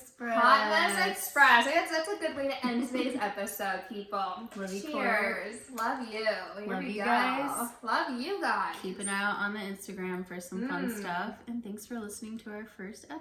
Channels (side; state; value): both; identical; correlation 1.00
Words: Hot Mess Express. That's a good way to end today's episode, people. Love you, Cheers. Love you. Here Love we you go. guys. Love you guys. Keep an eye out on the Instagram for some fun stuff. And thanks for listening to our first